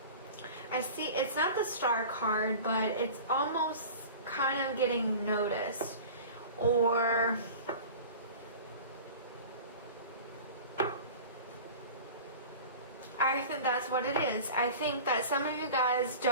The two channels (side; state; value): both; inverted; correlation -0.38